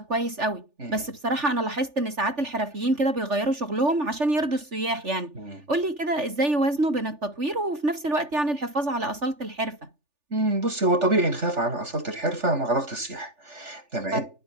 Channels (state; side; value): late; left; 3.4 ms